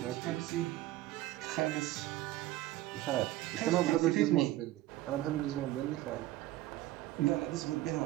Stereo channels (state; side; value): quieter; left; 15.8 dB